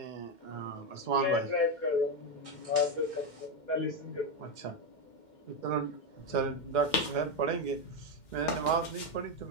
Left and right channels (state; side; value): late; right; 2.1 ms